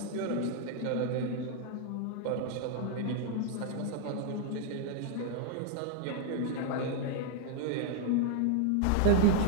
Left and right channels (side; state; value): both; different; correlation 0.00